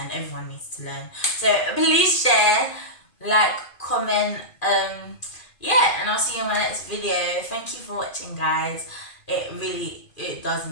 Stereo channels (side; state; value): right; late; 2.5 ms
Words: Everyone needs to learn. So please share, like, comment, yeah, and I'll see you in my next video. Thank you for watching, guys. It does